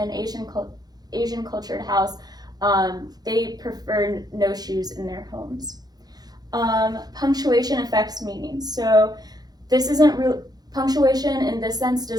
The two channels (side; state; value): left; late; 0.19 ms